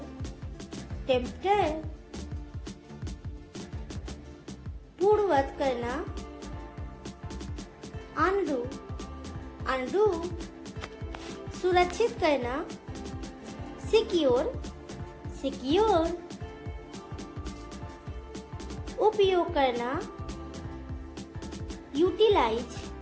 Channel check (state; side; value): identical; both; correlation 1.00